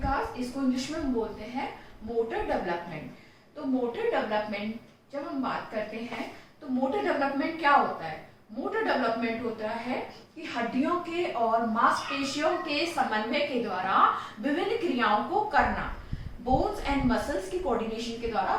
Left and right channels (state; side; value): identical; both; correlation 1.00